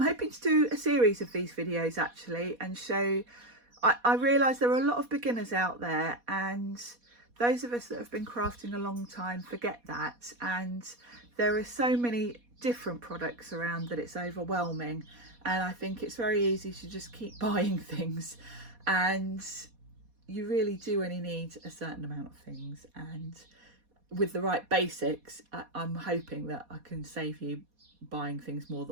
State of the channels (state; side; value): late; left; 4.2 ms